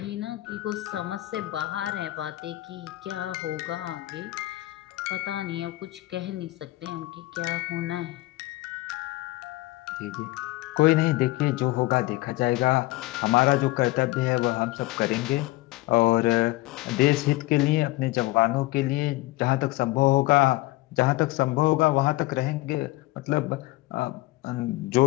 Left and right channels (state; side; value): quieter; right; 19.3 dB